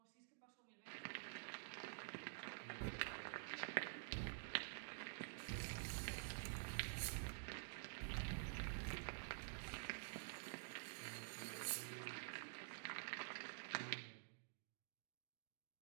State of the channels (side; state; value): left; silent; digital silence